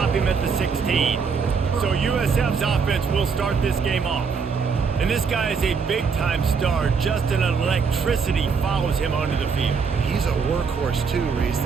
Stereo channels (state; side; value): quieter; left; 5.6 dB